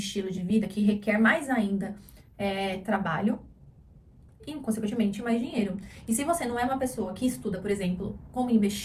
de vida que requer mais ainda trabalho e, consequentemente, mais dinheiro. E se você não é uma pessoa que estuda, por exemplo, como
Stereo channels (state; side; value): identical; both; correlation 1.00